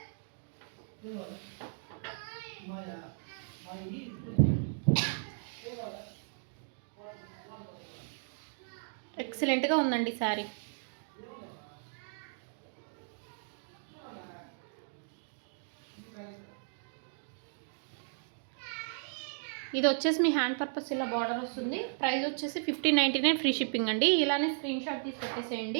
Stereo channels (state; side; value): silent; left; digital silence